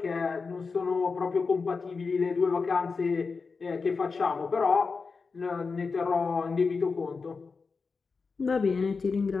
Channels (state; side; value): quieter; right; 4.7 dB